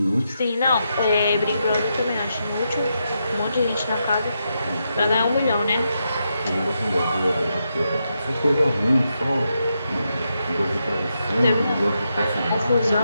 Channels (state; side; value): inverted; both; correlation -0.84